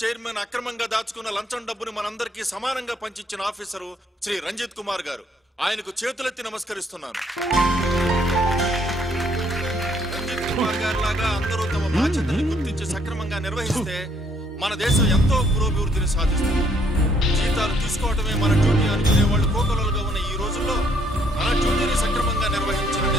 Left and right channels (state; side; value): normal; both; correlation 0.67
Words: అక్రమంగా దాచుకున్న లంచం డబ్బుని మనందరికీ సమానంగా పంచిచ్చిన ఆఫీసరు శ్రీ రంజిత్ కుమార్ గారు. ఆయనకు చేతులెత్తి నమస్కరిస్తున్నాను. రంజిత్ కుమార్ గారి లాగా అందరూ తమ బాధ్యతని గుర్తించి సక్రమంగా నిర్వహిస్తే మన దేశం ఎంతో పురోభివృద్ధిని సాధిస్తుంది. జీతాలు తీసుకోవటమే మన డ్యూటీ అనుకునే వాళ్ళు కోకొలలుగా ఉన్న ఈ రోజుల్లో మన డ్యూటీని సక్రమంగా నిర్వహించిన